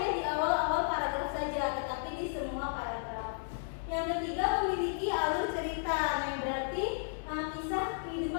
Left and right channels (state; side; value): silent; right; 55 dB below the other